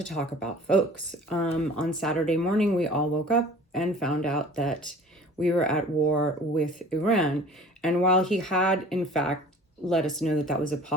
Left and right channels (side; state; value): both; normal; correlation 0.46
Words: talk about, folks. On Saturday morning, we all woke up and found out that we were at war with Iran. And while he had, in fact, let us know that that was a